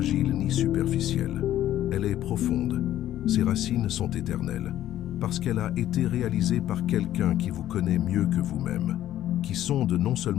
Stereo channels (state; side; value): quieter; right; 12.6 dB